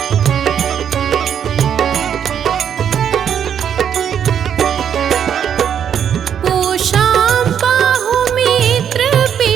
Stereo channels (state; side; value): quieter; left; 8.6 dB